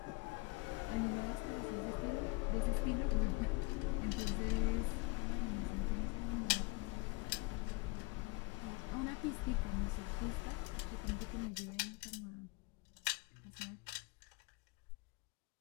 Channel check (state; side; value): quieter; right; 26.7 dB